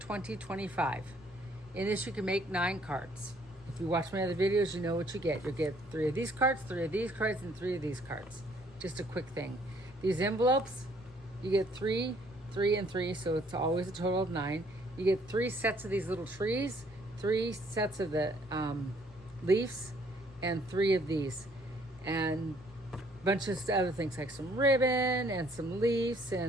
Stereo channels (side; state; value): both; normal; correlation 0.63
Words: In this you can make 9 cards. If you watch my other videos, you know what you get. You'll get 3 of these cards, 3 of these cards, and 3 of these cards. Just a quick thing. These envelopes, you get 3, 3, and 3, so it's always a total of 9. You get 3 sets of these little trees, 3 sets of the leaves, and 3 of these. And bunch of other things like some ribbon and some leaves,